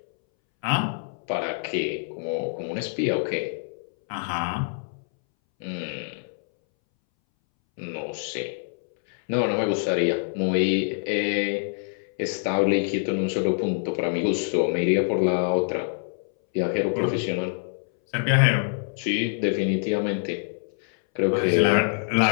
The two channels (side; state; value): right; silent; 61 dB below the other